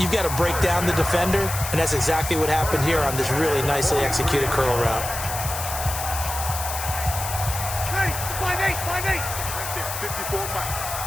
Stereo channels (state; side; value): noise; left; hiss, 6 dB below the sound